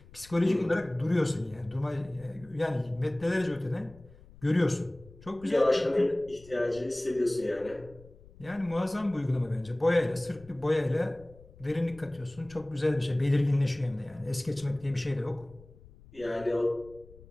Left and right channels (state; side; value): noise; left; rumble, 22 dB below the sound